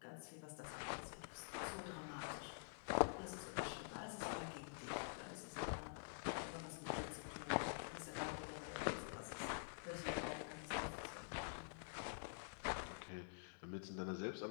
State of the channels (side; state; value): right; silent; digital silence